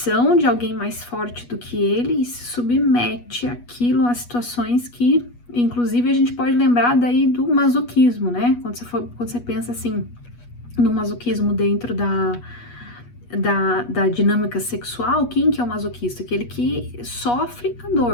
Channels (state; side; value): late; right; 8.3 ms